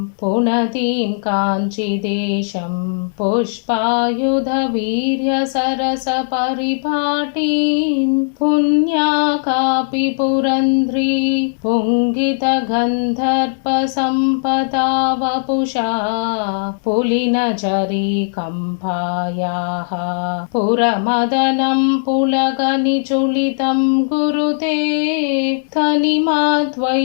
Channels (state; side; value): silent; right; digital silence